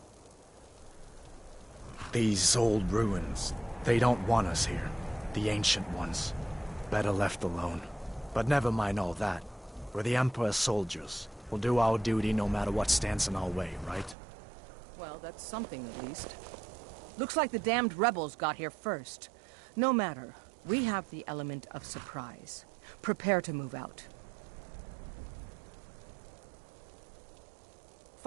These old ruins, they don't want us here. The ancient ones. Better left alone. But never mind all that. We're the Emperor's soldiers. We'll do our duty no matter what stands in our way, right? Well, that's something at least. Looks like the damned rebels got here first. No matter. We have the element of surprise. Prepare to move out.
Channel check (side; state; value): left; drops out; at 14.2 s